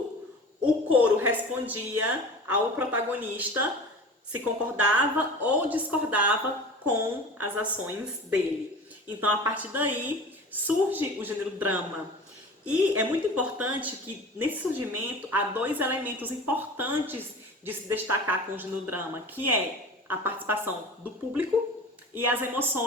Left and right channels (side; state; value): both; normal; correlation 0.37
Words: o coro respondia ao protagonista se concordava ou discordava com as ações dele. Então, a partir daí, surge o gênero drama. E é muito importante que, nesse surgimento, há dois elementos importantes de se destacar com o gênero drama, que é a participação do público e as